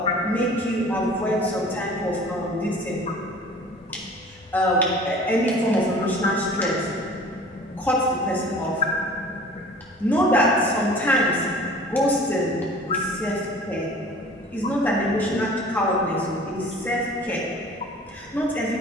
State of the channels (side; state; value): both; normal; correlation 0.45